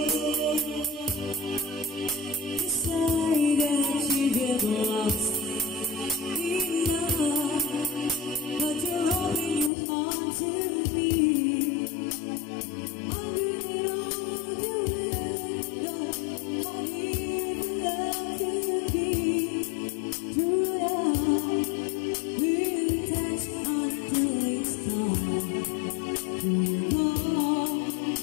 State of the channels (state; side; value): drops out; right; at 9.7 s